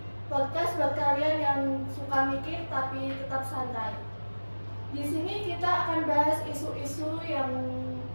Podcast buat kalian yang suka mikir tapi tetap santai. Di sini kita akan bahas isu-isu yang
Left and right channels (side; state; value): both; inverted; correlation -1.00